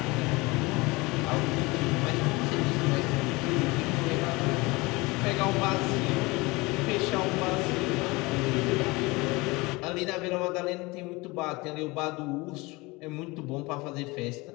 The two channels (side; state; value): right; quieter; 23.7 dB